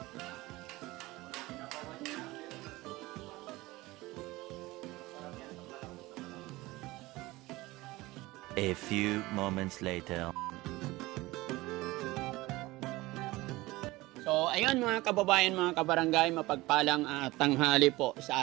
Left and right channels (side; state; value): left; quieter; 20.0 dB